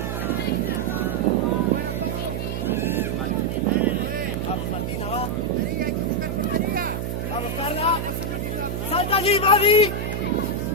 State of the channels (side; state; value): right; noise; hum, 3 dB below the sound